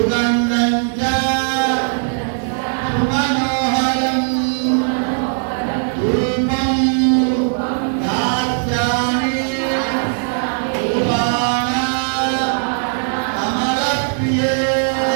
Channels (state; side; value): silent; left; 59 dB below the other